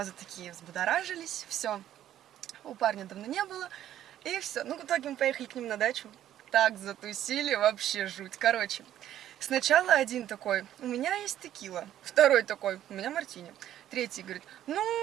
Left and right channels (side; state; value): left; quieter; 11.8 dB